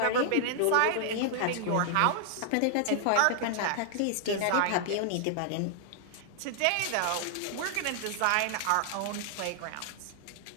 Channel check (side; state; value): both; different; correlation 0.00